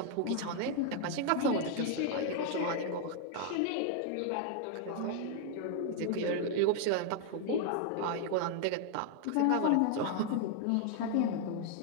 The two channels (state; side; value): different; both; correlation 0.00